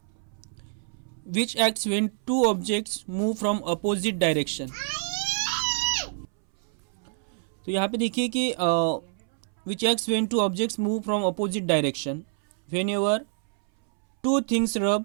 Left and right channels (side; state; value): left; silent; 60 dB below the other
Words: which acts when two objects move from opposite direction. तो यहाँ पे देखिए कि which acts when two objects move from opposite direction when ever two things rub